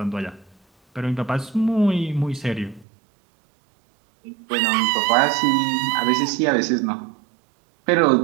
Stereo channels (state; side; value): drops out; left; at 2.9 s